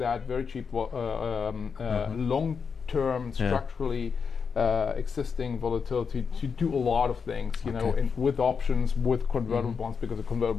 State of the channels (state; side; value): quieter; right; 5.9 dB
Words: very cheap long-term structurally existing volatility to do a lot of things, with options, with convertible bonds, because a